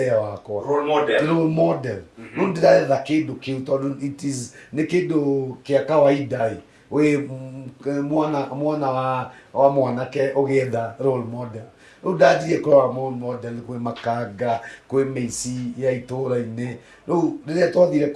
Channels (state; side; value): identical; both; correlation 1.00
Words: wakwa role model rĩu ndĩretha kĩndũ kĩu tondũ nĩ kĩndũ kĩa kawaida wĩ mwana wa mwanake ũgĩetha role model rĩu ndanjirie kũrora role model kwĩ Makanga kwĩ mĩici ya itũũra-inĩ rĩu rĩrĩa twathire